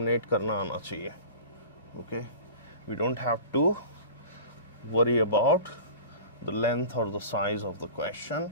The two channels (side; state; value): both; inverted; correlation -0.37